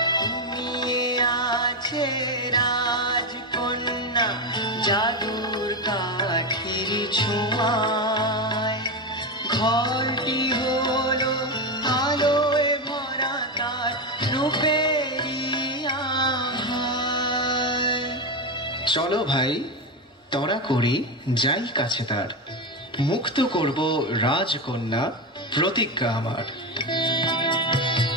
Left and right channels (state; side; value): normal; both; correlation 0.13